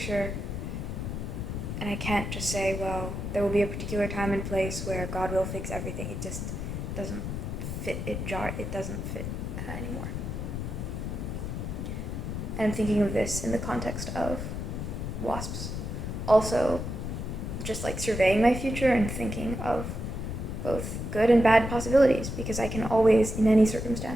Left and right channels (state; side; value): noise; left; rumble, 4 dB below the sound